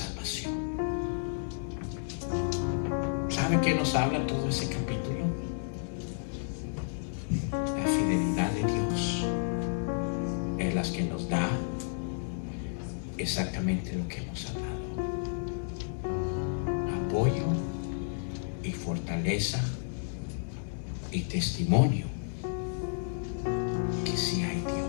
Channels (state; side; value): silent; right; digital silence